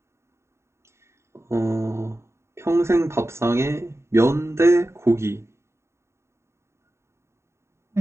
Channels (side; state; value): left; late; 0.13 ms